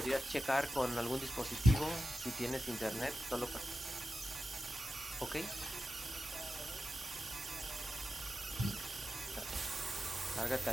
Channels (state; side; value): normal; both; correlation 0.92